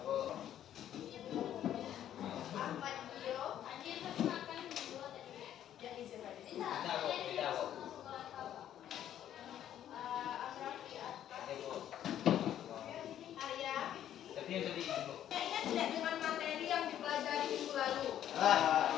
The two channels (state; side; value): quieter; right; 11.0 dB